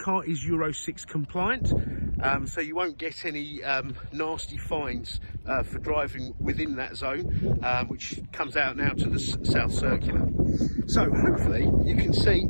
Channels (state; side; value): inverted; both; correlation -1.00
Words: is Euro 6 compliant, so you won't get any nasty fines for driving within that zone, which comes out now to the South Circular. So hopefully you can see